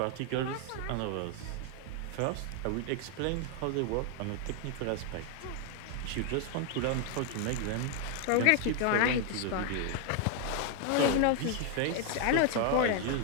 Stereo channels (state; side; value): different; both; correlation 0.00